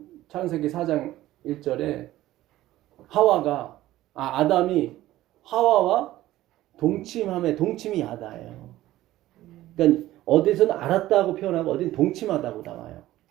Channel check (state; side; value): quieter; left; 15.3 dB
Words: 창세기 4장 1절에 아담이 하와와 동침이 야다예요. 그러니까 어디서는 알았다고 표현하고 어디는 동침하다고 나와요.